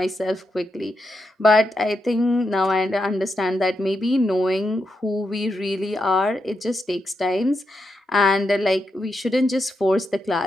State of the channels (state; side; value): normal; both; correlation 0.84